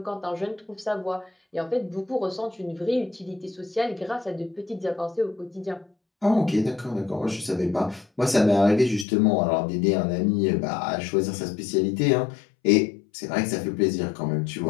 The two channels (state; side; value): drops out; right; at 9.1 s